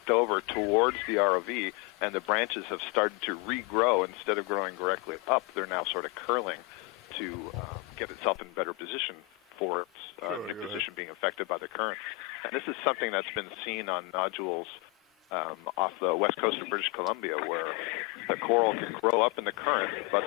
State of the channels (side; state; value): right; quieter; 23.6 dB